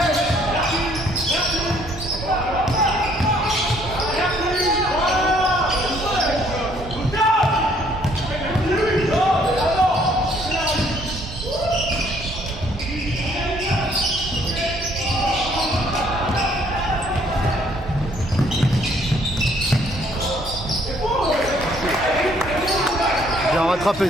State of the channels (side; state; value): both; normal; correlation 0.63